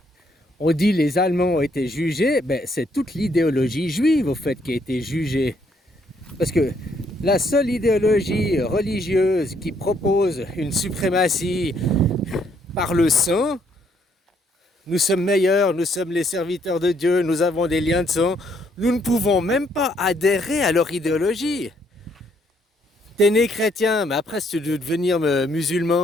on dit les Allemands ont été jugés, ben c'est toute l'idéologie juive au fait qui a été jugée. Parce que la seule idéologie religieuse qui propose une suprématie par le sang, nous sommes meilleurs, nous sommes les serviteurs de Dieu, nous avons des liens de sang, nous ne pouvons même pas adhérer à leur idéologie. T'es né chrétien, mais après si tu veux devenir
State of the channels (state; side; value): normal; both; correlation 0.70